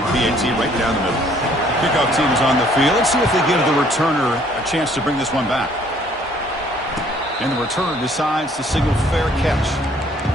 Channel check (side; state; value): both; normal; correlation 0.61